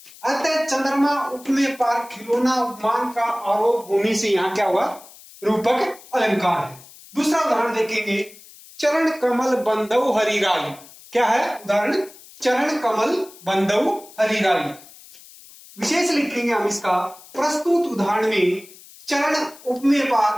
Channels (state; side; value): noise; left; hiss, 21 dB below the sound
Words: अतः चंद्रमा उपमेय पर खिलौना उपमान का आरोप होने से यहां क्या हुआ, रूपक अलंकार है। दूसरा उदाहरण देखेंगे, चरण कमल बंधु हरिराई, क्या है उदाहरण, चरण कमल बंधु हरिराई। विशेष लिखेंगे हम इसका, प्रस्तुत उदाहरण में चरण उपमेय